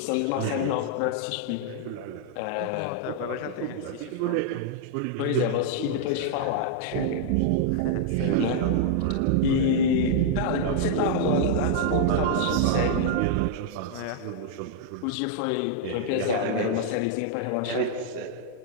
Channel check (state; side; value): different; both; correlation -0.01